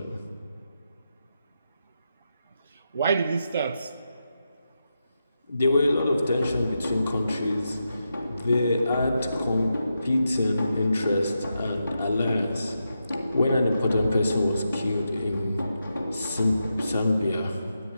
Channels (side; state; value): both; inverted; correlation -0.87